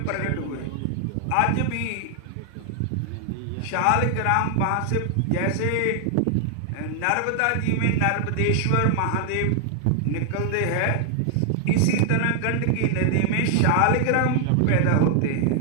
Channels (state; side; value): different; both; correlation 0.00